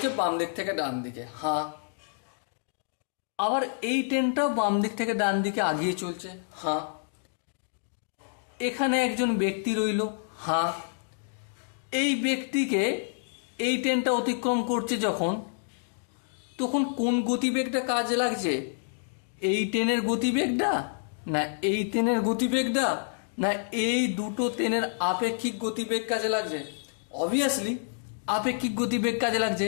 বাম দিক থেকে ডান দিকে, হ্যাঁ। আবার এই ট্রেনটাও বাম দিক থেকে ডান দিকে আগিয়ে চলছে, হ্যাঁ। এখানে একজন ব্যক্তি রইল, হ্যাঁ। এই ব্যক্তিকে এই ট্রেনটা অতিক্রম করছে যখন, তখন কোন গতিবেগটা কাজে লাগছে? এই ট্রেনের গতিবেগটা, না এই ট্রেনের গতিবেগটা, না এই দুটো ট্রেনের আপেক্ষিক গতিবেগ কাজে লাগছে? অবভিয়াসলি আপেক্ষিক গতিবেগ কাজে লাগছে,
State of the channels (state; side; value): silent; right; digital silence